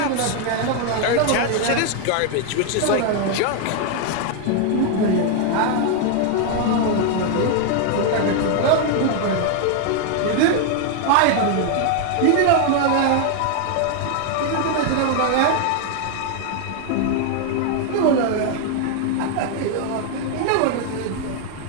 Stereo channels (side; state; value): both; different; correlation 0.00